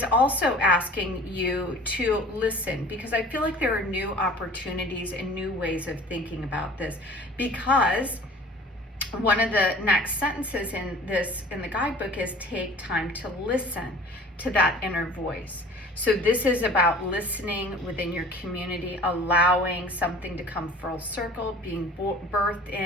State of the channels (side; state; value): both; normal; correlation 0.44